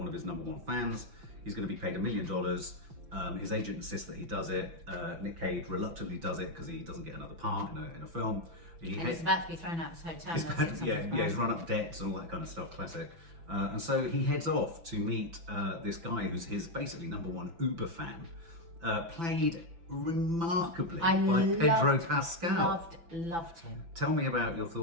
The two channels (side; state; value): left; late; 5.9 ms